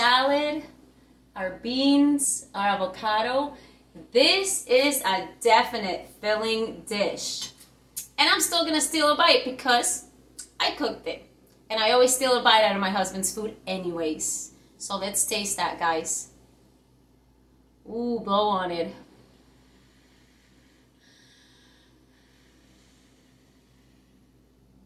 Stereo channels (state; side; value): identical; both; correlation 1.00